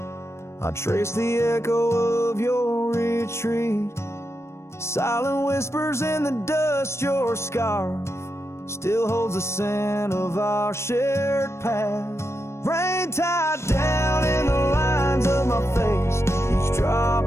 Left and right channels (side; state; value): right; late; 0.13 ms